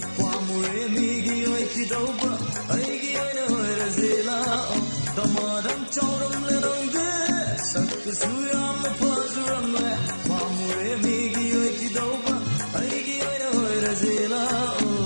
pamure megi oi ki dopa aigi oi ore sela Damaram choram larangde sakka suyam na pajuramle pamure megi oi ki dopa aigi oi ore sela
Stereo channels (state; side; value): inverted; both; correlation -1.00